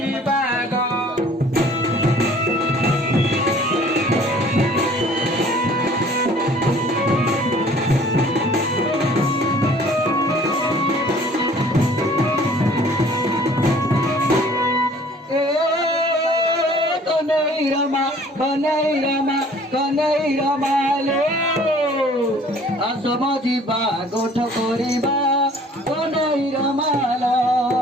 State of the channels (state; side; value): normal; both; correlation 0.53